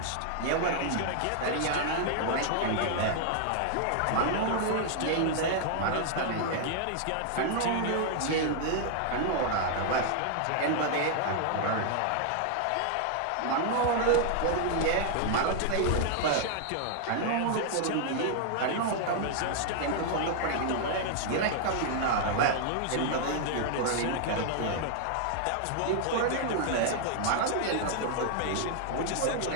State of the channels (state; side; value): different; both; correlation 0.00